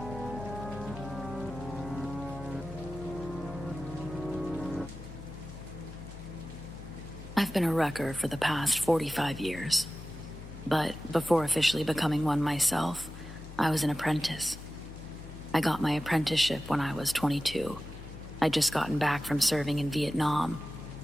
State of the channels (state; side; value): noise; left; hum, 13 dB below the sound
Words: I've been a wrecker for the past 45 years. But before officially becoming one myself, I was an apprentice. I got my apprenticeship when I was 22. I'd just gotten back from serving in Vietnam.